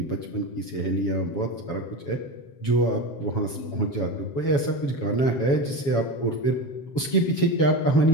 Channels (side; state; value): right; late; 7.2 ms